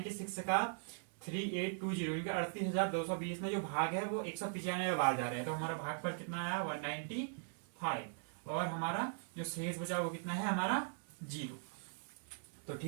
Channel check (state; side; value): silent; left; 51 dB below the other